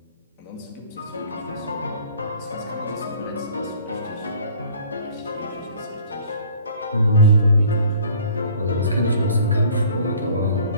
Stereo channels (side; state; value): both; inverted; correlation -0.52